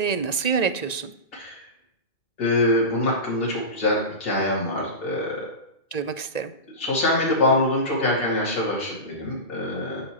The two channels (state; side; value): late; right; 1.9 ms